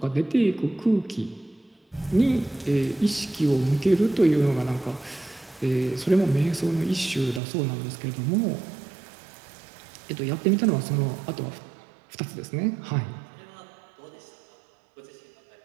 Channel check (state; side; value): drops out; left; at 7.4 s